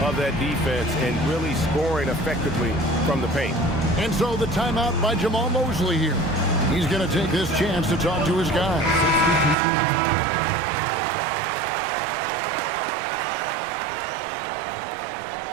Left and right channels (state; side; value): drops out; left; at 9.6 s